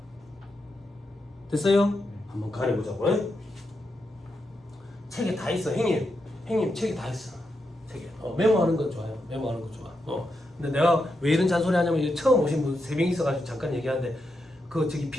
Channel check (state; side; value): normal; both; correlation 0.85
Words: 됐어요? 한번 가려보자고. 책에 다 있어. 형님 책에 다 있어. 책에. 메모하는 건 좋아요. 메모하는 건 좋아. 근데 내가 왜 이런 잔소리 하냐면 처음 오신 분 3명 있어가지고 잠깐 얘기하는데 그 저기